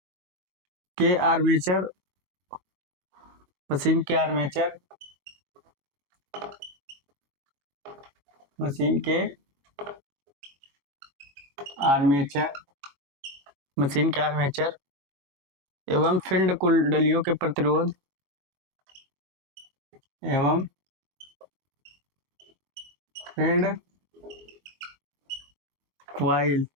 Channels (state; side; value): late; left; 21 ms